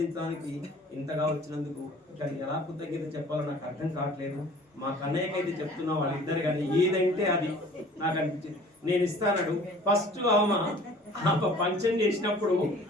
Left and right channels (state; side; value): normal; both; correlation 0.49